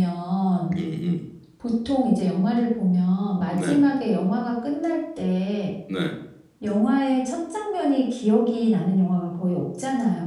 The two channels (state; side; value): identical; both; correlation 1.00